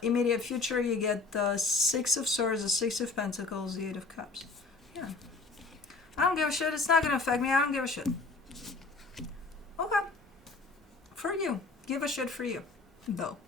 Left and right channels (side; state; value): right; quieter; 3.9 dB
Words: immediate future, you get the Six of Swords, the Six of Pentacles, the Eight of Cups. Yeah. I don't give a shit. It's not going to affect me. I don't give a shit. Okay. For you. Give a shit for you, though.